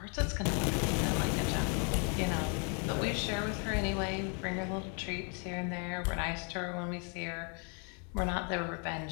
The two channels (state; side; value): quieter; right; 38.4 dB